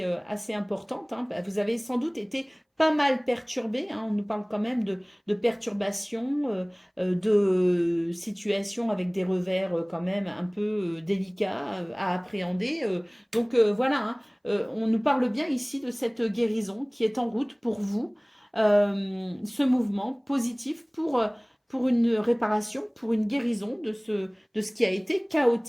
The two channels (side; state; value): both; identical; correlation 1.00